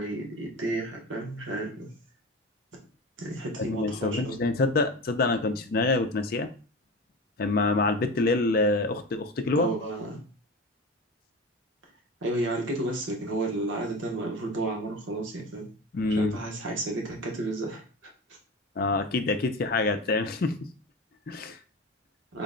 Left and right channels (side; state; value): both; normal; correlation 0.29